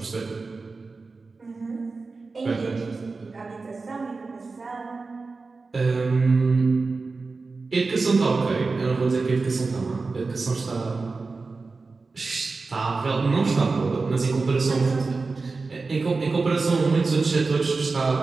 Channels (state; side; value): quieter; left; 4.0 dB